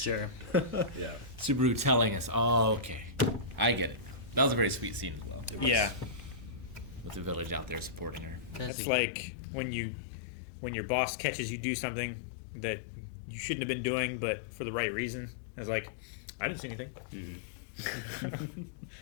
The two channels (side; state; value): right; drops out; at 8.7 s